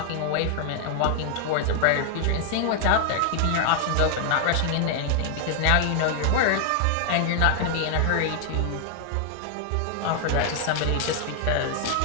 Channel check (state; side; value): different; both; correlation 0.00